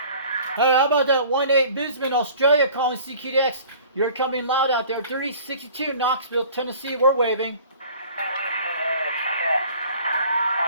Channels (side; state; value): both; inverted; correlation -0.48